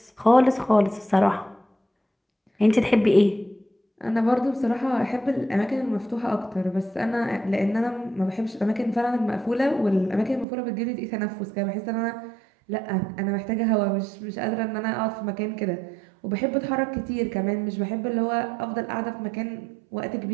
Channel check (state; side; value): drops out; left; at 10.5 s